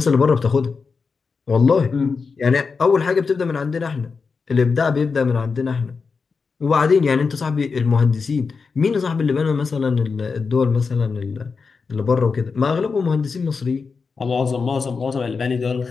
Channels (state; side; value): quieter; right; 5.0 dB